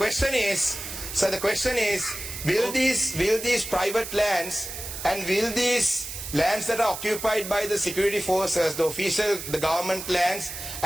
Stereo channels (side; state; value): right; noise; hiss, 8 dB below the sound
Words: is, will these private lands and will these lands that are occupied by the security forces, the government lands